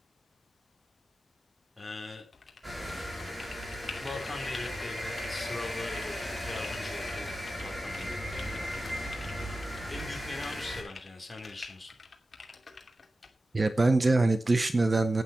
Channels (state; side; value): normal; both; correlation 0.94